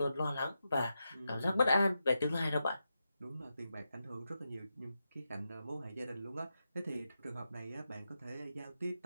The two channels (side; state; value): both; inverted; correlation -0.88